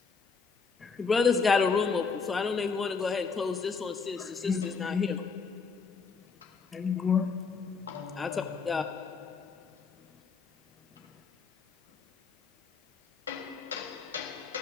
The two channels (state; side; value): quieter; right; 5.2 dB